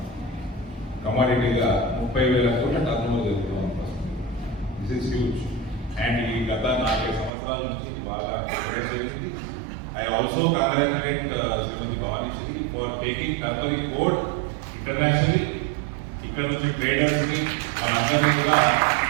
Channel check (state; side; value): drops out; left; at 7.3 s